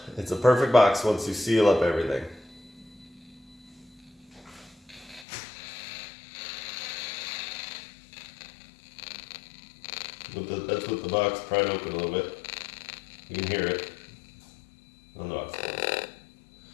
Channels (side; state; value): right; drops out; at 5.2 s